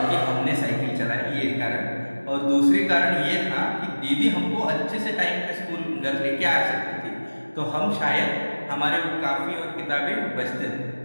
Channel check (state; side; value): inverted; both; correlation -1.00